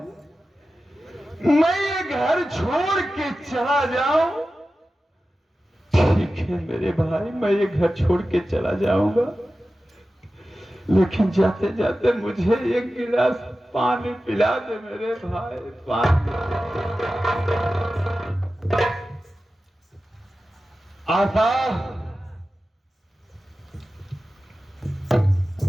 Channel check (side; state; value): both; normal; correlation 0.94